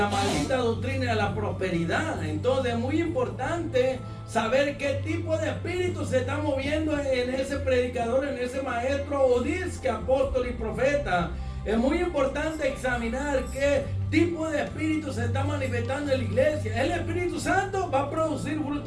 maldita doctrina de la prosperidad. Entonces es muy importante saber qué tipo de espíritu se está moviendo en ese predicador, en ese maestro o disque apóstol y profeta. Es muy importante examinar qué tipo de espíritu se está manifestando en la iglesia. El Espíritu Santo va a producir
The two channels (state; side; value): identical; both; correlation 1.00